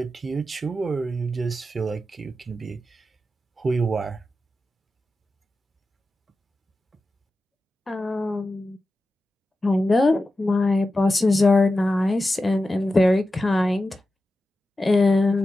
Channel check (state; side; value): normal; both; correlation 0.92